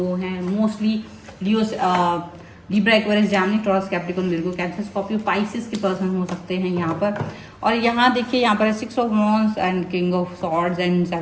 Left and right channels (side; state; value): both; identical; correlation 1.00